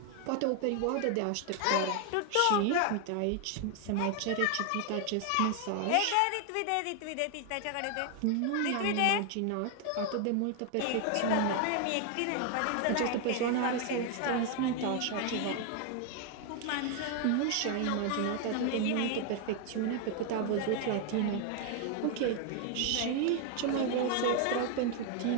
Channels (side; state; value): both; different; correlation 0.00